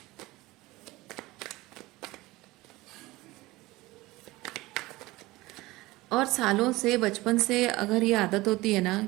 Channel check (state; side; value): quieter; left; 19.9 dB